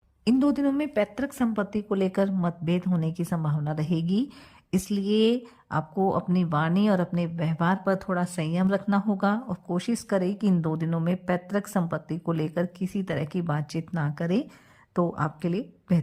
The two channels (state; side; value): identical; both; correlation 1.00